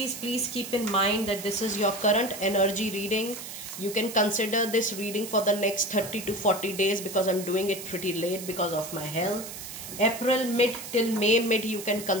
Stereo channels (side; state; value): right; noise; hiss, 10 dB below the sound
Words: please keep in mind that this is your current energy reading. You can consider this reading for the next 30 to 40 days because I'm doing it pretty late because of my health. April mid till May mid, you can